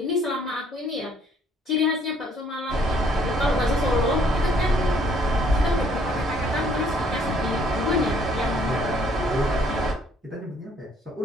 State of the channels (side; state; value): both; normal; correlation 0.63